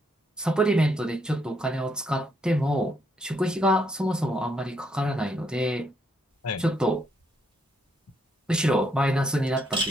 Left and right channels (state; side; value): normal; both; correlation 0.74